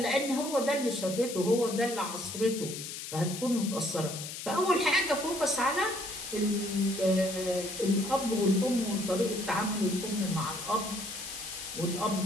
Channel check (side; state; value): left; noise; hiss, 8 dB below the sound